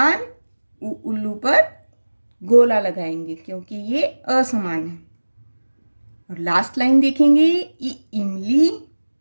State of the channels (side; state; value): both; inverted; correlation -1.00